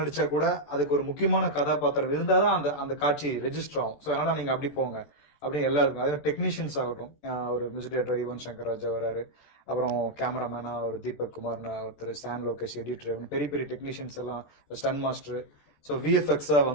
கூட அதுக்கு ஒரு முக்கியமான கதாபாத்திரம் இருந்தாதான் அந்த அந்த காட்சி ரெஜிஸ்டர் ஆகும். ஸோ அதனால நீங்க அப்படி போங்க அப்படின்னு எல்லாருக்கும். அதே டெக்னீஷியன்ஸ் ஆகட்டும், ஒரு மியூசிக் டைரக்டர் யுவன் சங்கர் ராஜா வராரு, அப்புறம் கேமராமேனா ஒரு தீபக் குமார்னு ஒருத்தர், சான் லோகேஷ் எடிட்டர், பெரிய பெரிய டெக்னீஷியன்ஸ் எல்லாம், ஸ்டன் மாஸ்டர். ஸோ விஎஃப்எக்ஸா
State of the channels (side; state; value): right; late; 14 ms